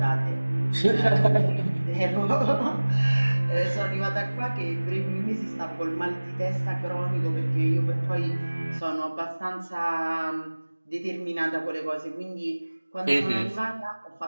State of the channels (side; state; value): both; inverted; correlation -1.00